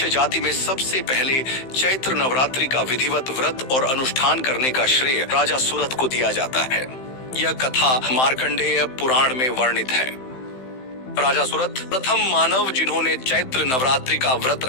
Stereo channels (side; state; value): right; late; 15 ms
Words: जाति में सबसे पहले चैत्र नवरात्रि का विधिवत व्रत और अनुष्ठान करने का श्रेय राजा सुरथ को दिया जाता है। यह कथा मार्कंडेय पुराण में वर्णित है। राजा सुरथ प्रथम मानव जिन्होंने चैत्र नवरात्रि का व्रत